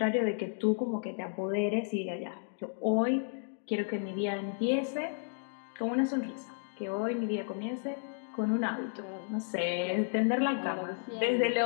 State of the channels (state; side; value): silent; right; digital silence